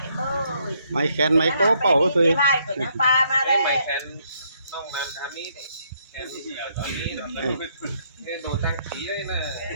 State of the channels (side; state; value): both; inverted; correlation -0.72